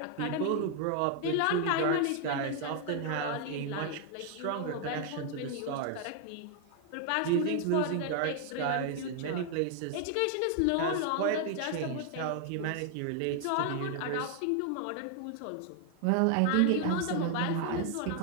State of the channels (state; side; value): different; both; correlation 0.00